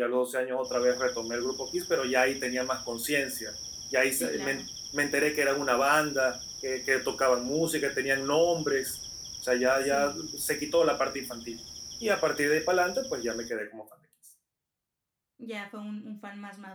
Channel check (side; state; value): both; identical; correlation 1.00